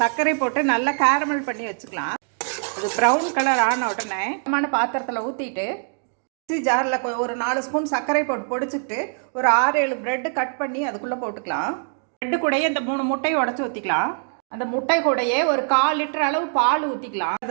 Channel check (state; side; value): silent; left; 62 dB below the other